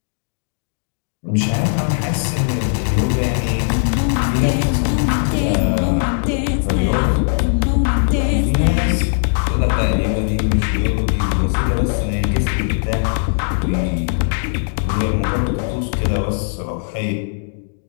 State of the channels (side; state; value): right; silent; digital silence